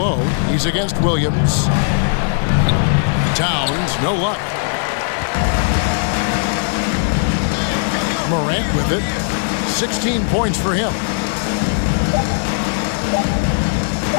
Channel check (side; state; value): right; silent; digital silence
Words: He's against Williams. Towns, no luck. Morant with it. 16 points for him.